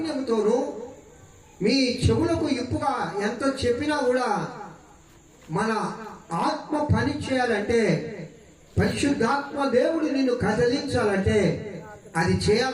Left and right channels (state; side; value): identical; both; correlation 1.00